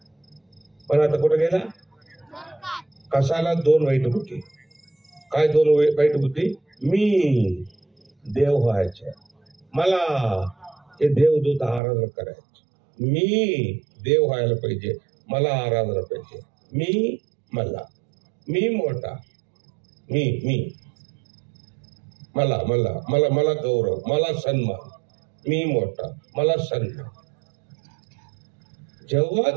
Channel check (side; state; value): left; drops out; at 11.8 s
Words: पण आता कुठे गेला? कशाला? 2 वाईट बुद्धी. काय 2 वाईट बुद्धी? मी देव व्हायचे, मला हे देवदूत आराधना करायचे, मी देव व्हायला पाहिजे, मला आराधना पाहिजे, मी मोठा, मला गौरव, मला सन्मान, मी मोठा, मला सन्मान. जेव्हा